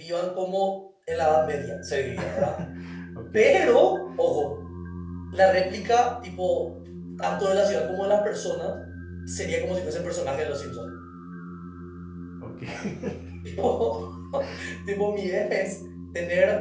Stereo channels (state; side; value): identical; both; correlation 1.00